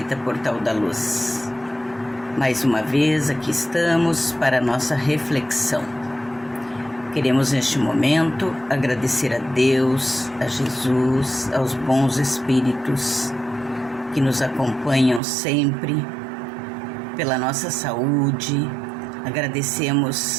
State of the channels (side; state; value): left; drops out; at 15.2 s